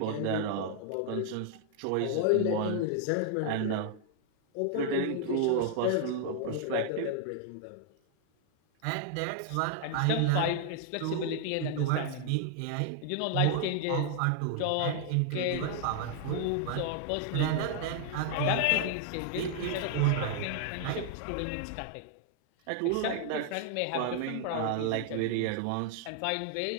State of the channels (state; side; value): different; both; correlation 0.00